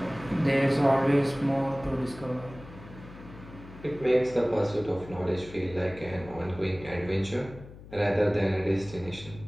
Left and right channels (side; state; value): left; noise; hum, 17 dB below the sound